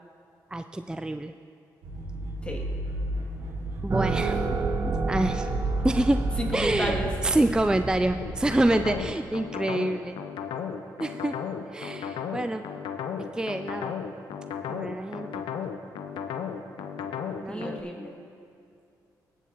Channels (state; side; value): normal; both; correlation 0.82